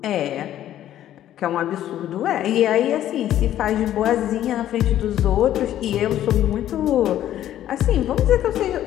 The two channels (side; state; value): right; quieter; 12.1 dB